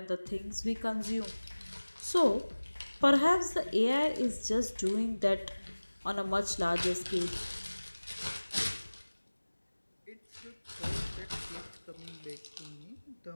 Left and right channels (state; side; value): inverted; both; correlation -1.00